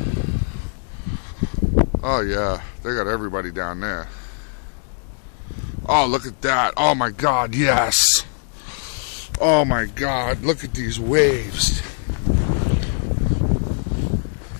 Oh yeah, they got everybody down there. Oh, look at that. Oh my God, yes. Oh my God, look at these waves.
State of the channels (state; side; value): silent; right; digital silence